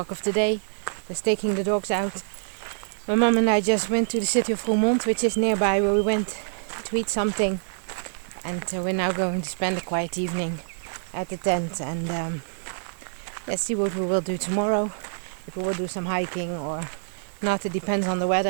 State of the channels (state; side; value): silent; left; digital silence